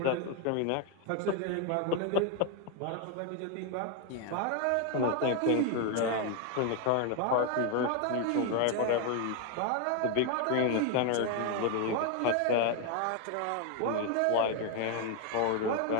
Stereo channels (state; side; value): different; both; correlation 0.01